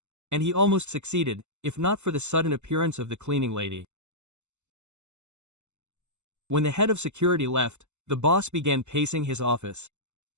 And he almost succeeded, if not for the sudden appearance of the cleaning lady. When the head of security left, the boss began pacing his office.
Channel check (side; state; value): left; late; 0.83 ms